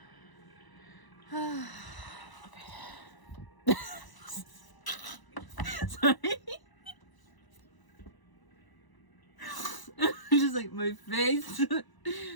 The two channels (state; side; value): late; right; 1.0 ms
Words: Sorry. Just like my face.